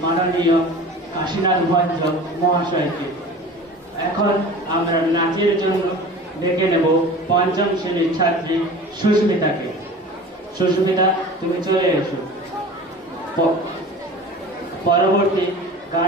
মাননীয় কাশীনাথ ভঞ্জ মহাশয়কে। এখন আমরা নাচের জন্য ডেকে নেব পঞ্চম শ্রেণীর ছাত্রী সুস্মিতাকে। সুস্মিতা, তুমি চলে এসো। পরবর্তী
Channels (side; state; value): both; normal; correlation 0.38